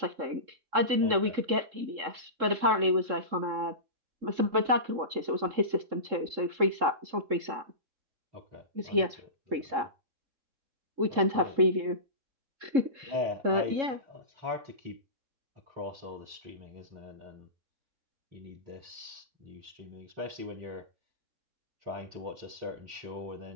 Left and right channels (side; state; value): left; late; 3.7 ms